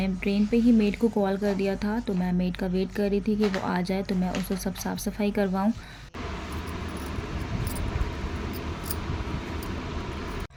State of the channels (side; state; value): both; identical; correlation 1.00